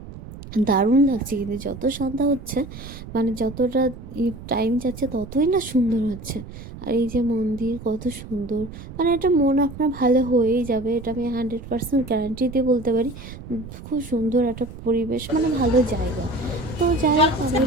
দারুণ লাগছে। কিন্তু যত সন্ধ্যা হচ্ছে, মানে যতটা টাইম যাচ্ছে ততই না সুন্দর হচ্ছে। আর এই যে মন্দির কত সুন্দর, মানে এটা মন আপনার ভালো হয়েই যাবে, এটা আমি 100% গ্যারান্টি দিয়ে বলতে পারি। খুব সুন্দর একটা পরিবেশ, মানে ভালো জায়গা। তো যাই হোক, আমরা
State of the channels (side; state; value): right; noise; rumble, 13 dB below the sound